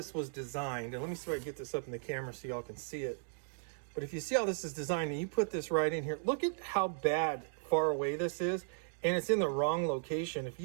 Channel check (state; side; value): silent; left; digital silence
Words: was designed, and let me see if I can get this up in the camera so y'all can see it. But if you see how this is designed, and you put this right in here, look at how bad far away this is, and it's in the wrong location. If